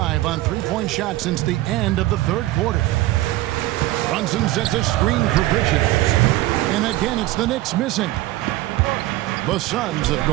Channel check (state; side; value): quieter; left; 17.1 dB